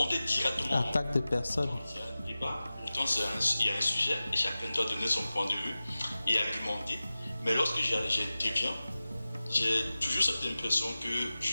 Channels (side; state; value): both; inverted; correlation -0.96